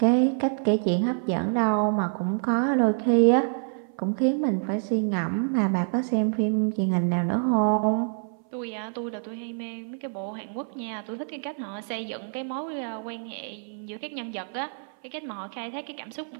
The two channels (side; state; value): left; silent; 60 dB below the other